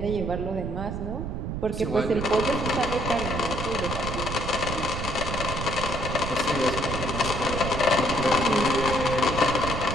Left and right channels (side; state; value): right; noise; rumble, 4 dB below the sound